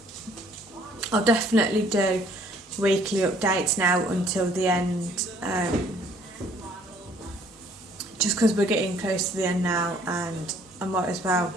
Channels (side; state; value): both; normal; correlation 0.60